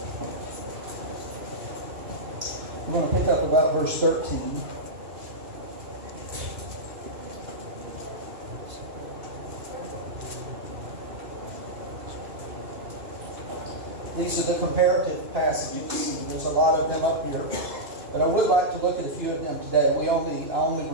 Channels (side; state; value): left; late; 2.9 ms